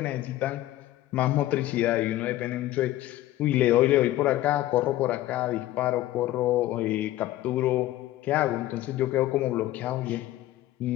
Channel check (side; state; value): right; quieter; 15.1 dB